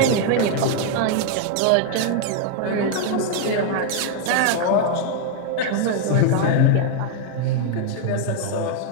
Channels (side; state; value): both; different; correlation 0.00